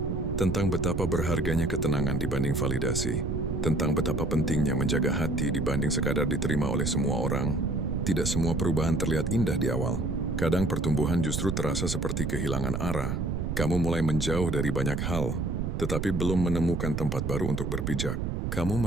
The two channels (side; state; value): right; noise; rumble, 1 dB below the sound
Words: tentang betapa berharganya ketenangan dibanding validasi, tentang betapa pentingnya menjaga hati dibanding sekadar diterima oleh semua orang. Tidak semua perubahan terlihat indah di awal. Kadang pertumbuhan justru terasa seperti kehilangan arah. Kamu mulai menjauh dari banyak hal, tetapi belum menemukan tempat baru untuk berpijak. Kamu